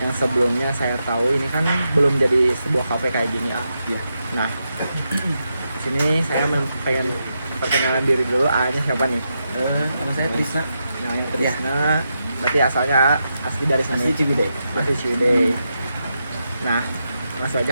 Yang sebelumnya saya tahu ini kan belum jadi sebuah HP kayak gini ya. Nah, di sini saya pengen perkenalan diri dulu. A-nya siapa nih? Nama saya Trisna. Namanya Trisna. Berarti asalnya asli dari sini. Asli Ciwidey. Asli Ciwidey. Nah, langsung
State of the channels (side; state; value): both; inverted; correlation -0.85